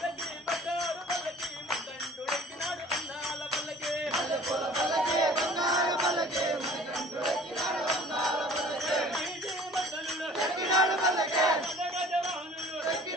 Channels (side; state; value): both; normal; correlation 0.48